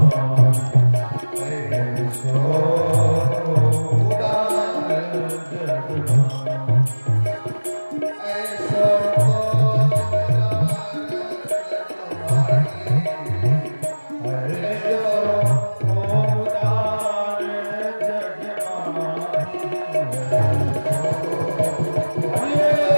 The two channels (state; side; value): inverted; both; correlation -1.00